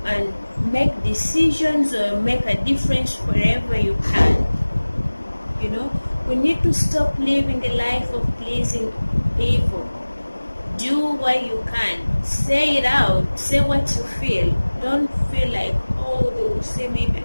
and make decisions or make a difference wherever you can. We need to stop living a life of pleasing people. Do what you can. Say it out. Say what you feel. Don't feel like, they will say maybe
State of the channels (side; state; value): both; inverted; correlation -1.00